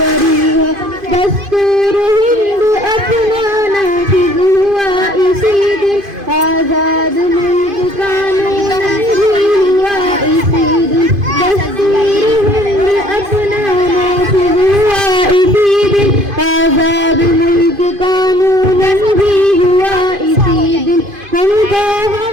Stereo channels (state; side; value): late; left; 2.5 ms